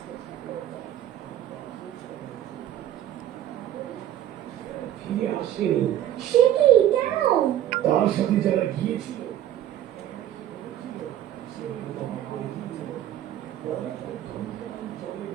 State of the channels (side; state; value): left; quieter; 11.9 dB